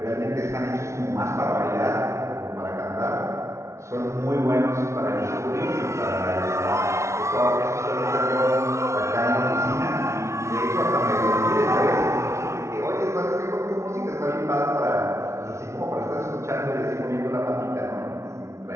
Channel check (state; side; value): late; left; 0.13 ms